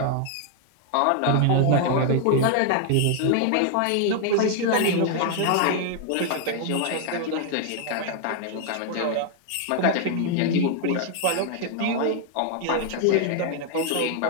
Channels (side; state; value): both; different; correlation 0.00